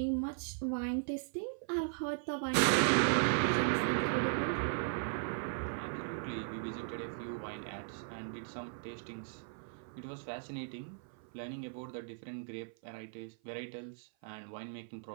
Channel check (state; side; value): silent; left; 53 dB below the other